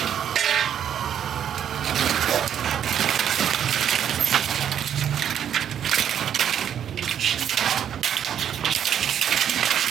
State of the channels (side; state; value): left; quieter; 9.3 dB